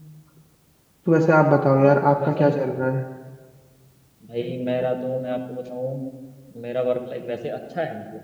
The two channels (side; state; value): both; identical; correlation 1.00